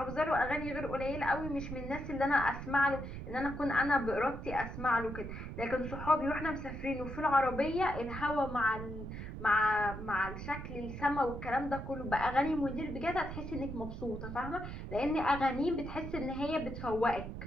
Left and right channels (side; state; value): right; noise; rumble, 8 dB below the sound